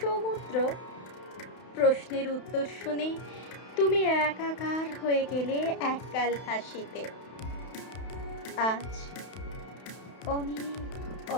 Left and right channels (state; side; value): late; right; 31 ms